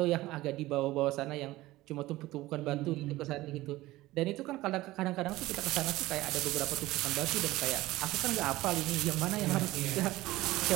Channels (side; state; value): left; quieter; 17.8 dB